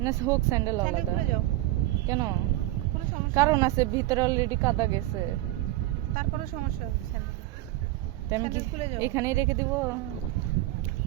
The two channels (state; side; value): quieter; left; 17.2 dB